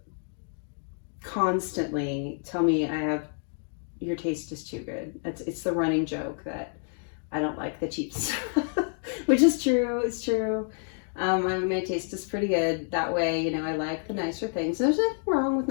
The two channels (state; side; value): silent; right; 59 dB below the other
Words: constantly tell me your taste is too good. It's the running joke that I don't like the cheap stuff, which is true. It's true. My taste is pretty good that way. You know, I like the nicer things. There's nothing wrong with